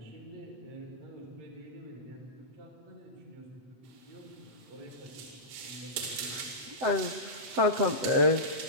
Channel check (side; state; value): left; late; 7.9 ms